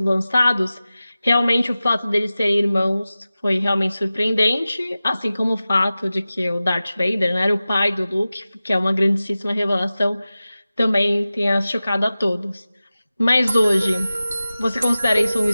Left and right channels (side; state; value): both; inverted; correlation -0.96